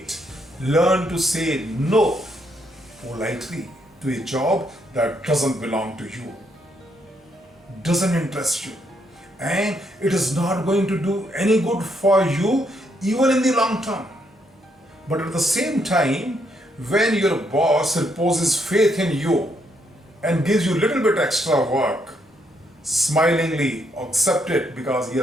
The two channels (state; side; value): normal; both; correlation 0.75